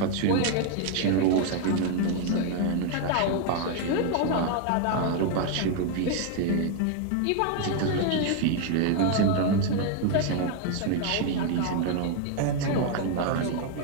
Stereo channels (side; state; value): both; different; correlation 0.01